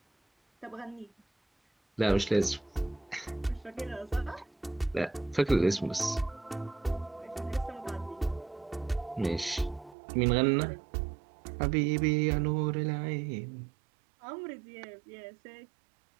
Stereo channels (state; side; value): drops out; left; at 10.0 s